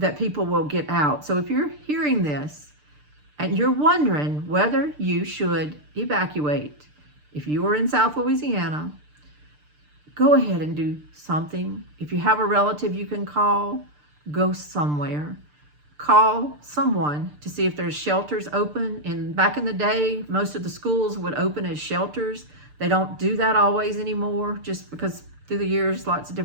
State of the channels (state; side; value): late; left; 6.7 ms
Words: people will get out. So if you're hearing this and you're wondering whether you should evacuate, if you are in South Louisiana, go ahead and do something. If you have a relative you can call, go somewhere. Call someone to see if there's shelters open. And back in the day, most of the schools would open as shelters. They don't do that always anymore, just because through the years, lots of